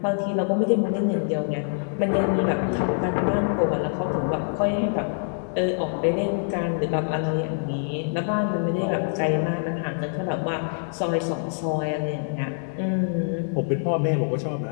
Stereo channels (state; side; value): silent; right; digital silence